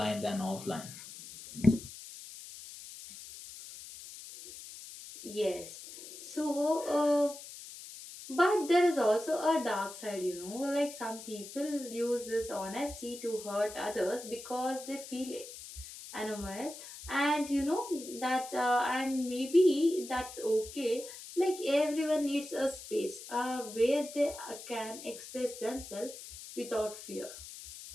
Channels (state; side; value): noise; left; hiss, 13 dB below the sound